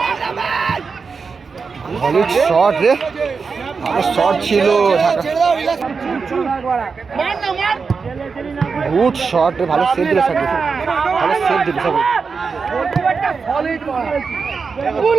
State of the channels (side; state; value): left; quieter; 5.1 dB